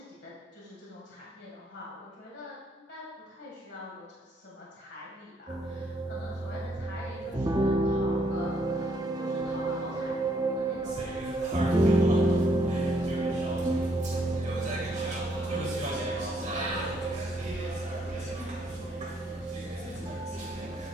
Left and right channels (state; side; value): normal; both; correlation 0.70